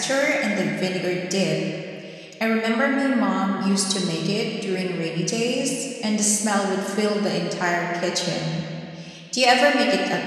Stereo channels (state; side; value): identical; both; correlation 1.00